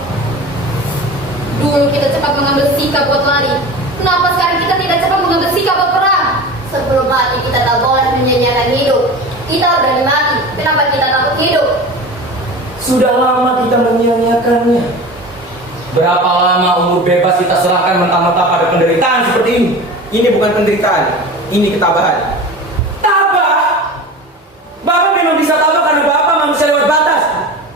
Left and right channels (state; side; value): normal; both; correlation 0.33